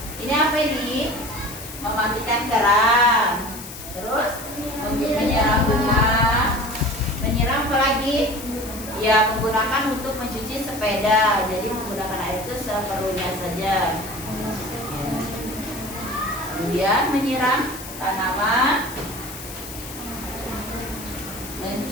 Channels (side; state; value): left; noise; hiss, 12 dB below the sound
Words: Ini apa ini? Mematikan keran. Terus menyiram bunga. Menyiram apa lagi? Ya, menggunakan untuk mencuci sepeda. Jadi menggunakan air itu seperlunya saja. Ya. Kemudian menyiram tanaman,